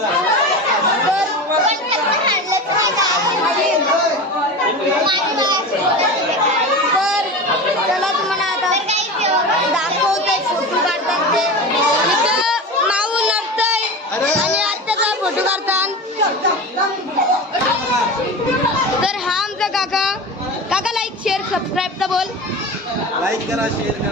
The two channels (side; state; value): both; normal; correlation 0.28